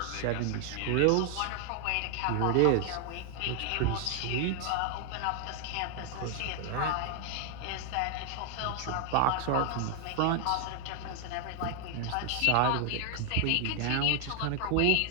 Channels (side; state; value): both; different; correlation 0.00